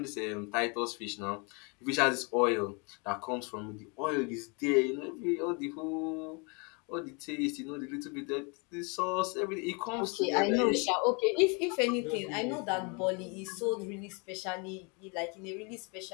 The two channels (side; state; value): right; quieter; 32.7 dB